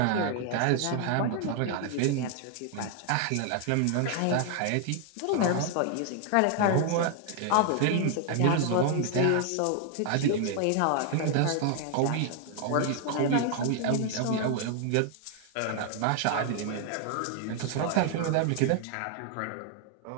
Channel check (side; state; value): both; different; correlation 0.00